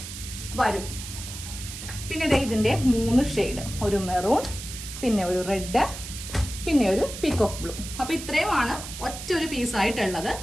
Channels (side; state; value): right; noise; hiss, 10 dB below the sound